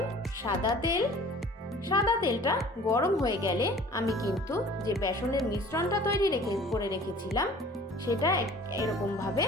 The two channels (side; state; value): both; normal; correlation 0.48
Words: সাদা তেল। সাদা তেলটা গরম হয়ে গেলে আমি কিন্তু যে বেসনের মিশ্রণটা তৈরি করে রেখেছিলাম সেটা এরকমভাবে